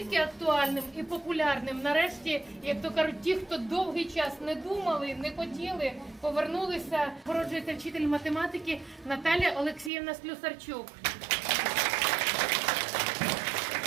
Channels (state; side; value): drops out; left; at 9.9 s